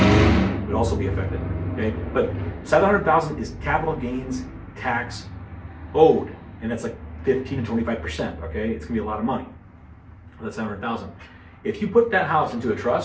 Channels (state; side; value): identical; both; correlation 1.00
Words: you would also be affected. Okay, but $700,000 is capital gains tax owed, and that's like 15 to 25%. Okay, it's gonna be a lot of money. That's $700,000. If you put that house into a